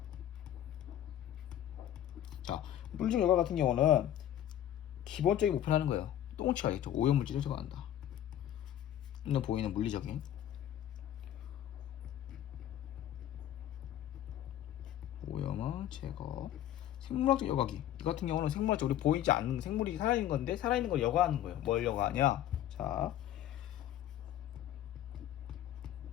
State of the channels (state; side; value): quieter; right; 11.7 dB